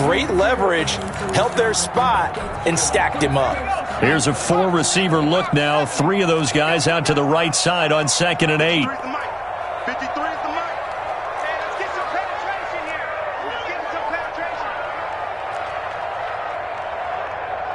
leverage, held their spot, and stacked him up. Here's a 4-receiver look now. 3 of those guys out to the right side on 2nd and 8. 53 is the mic. Hey, let's get some penetration here. Let's get some penetration.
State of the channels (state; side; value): identical; both; correlation 1.00